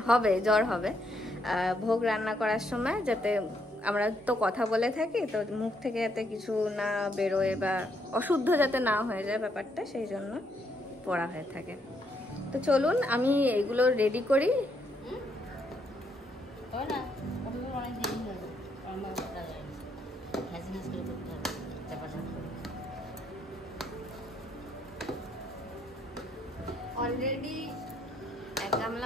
হবে, জ্বর হবে, ভোগ রান্না করার সময় যাতে আমরা তো কথা বলে থাকি, তো মুখ থেকে যাতে কিছু না বেরোয় বা অশুদ্ধ যাতে না হয়ে যায় ব্যাপারটা, সেই জন্য পড়া হয়ে থাকে। তো চলুন আমি এগুলো রেডি করি। অলরেডি এক গামলা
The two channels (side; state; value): both; normal; correlation 0.74